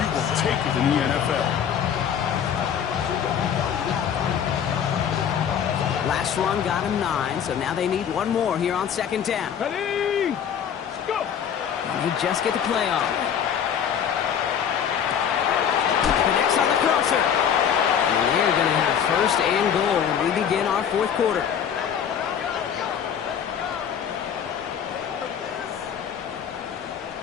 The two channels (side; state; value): right; quieter; 8.3 dB